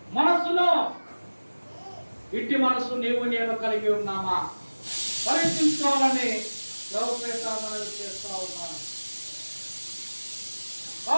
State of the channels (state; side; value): inverted; both; correlation -1.00